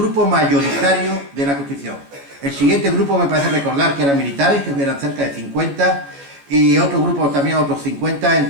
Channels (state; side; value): late; left; 14 ms